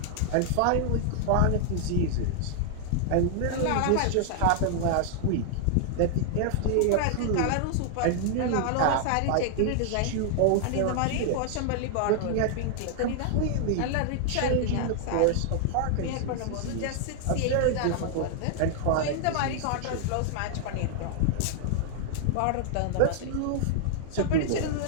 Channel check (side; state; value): both; different; correlation 0.00